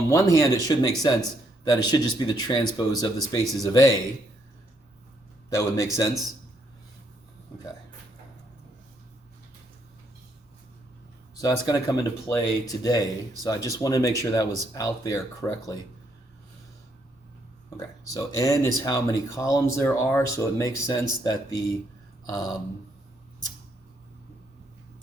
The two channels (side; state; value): both; normal; correlation 0.73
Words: one hand, it should make sense that it should just be the transpose of the spaces of A. That would make sense. Okay. So that's going to come into play today. So I just wanted to make sure that was out there correctly. Okay, so n is how many columns there are, so it makes sense that the